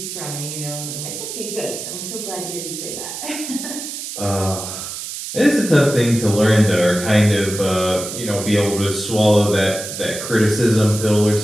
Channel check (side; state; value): right; noise; hiss, 8 dB below the sound